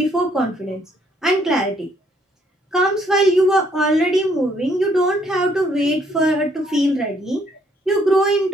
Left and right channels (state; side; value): normal; both; correlation 0.67